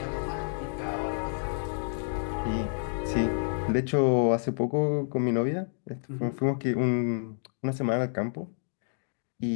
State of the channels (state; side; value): silent; right; digital silence